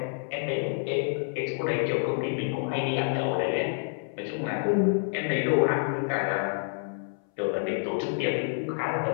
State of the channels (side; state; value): right; silent; 59 dB below the other